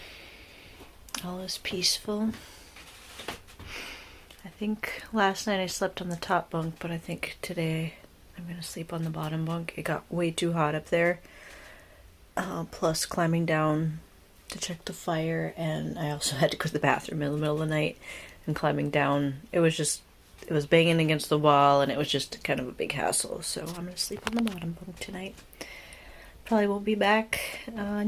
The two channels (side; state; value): both; identical; correlation 1.00